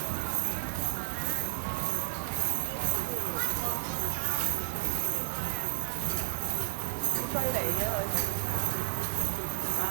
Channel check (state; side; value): silent; left; digital silence